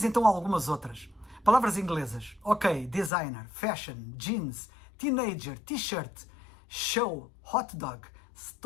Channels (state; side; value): drops out; right; at 3.1 s